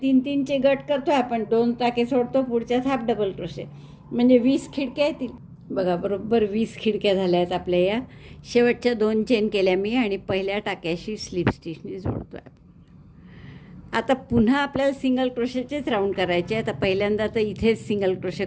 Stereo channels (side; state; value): both; identical; correlation 1.00